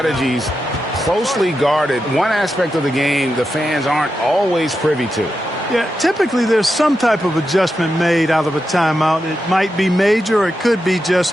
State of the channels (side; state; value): both; normal; correlation 0.88